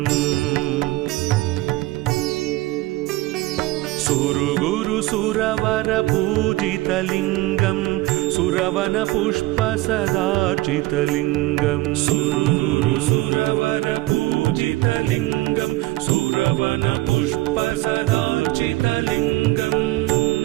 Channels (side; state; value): left; quieter; 18.5 dB